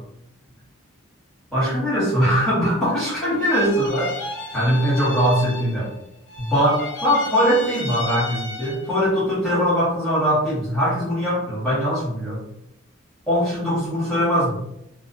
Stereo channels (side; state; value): both; normal; correlation 0.33